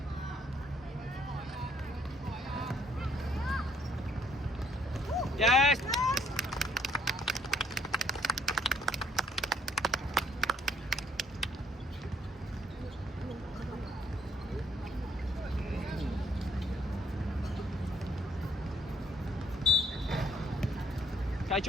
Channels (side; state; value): both; normal; correlation 0.66